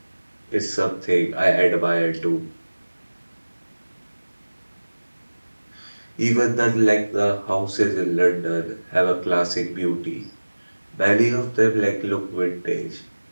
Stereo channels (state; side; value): inverted; both; correlation -1.00